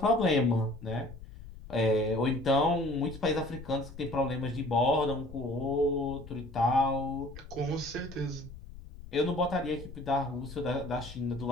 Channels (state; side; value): noise; left; rumble, 15 dB below the sound